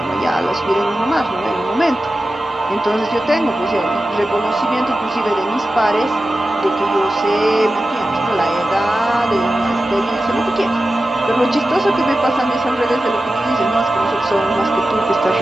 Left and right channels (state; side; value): normal; both; correlation 0.93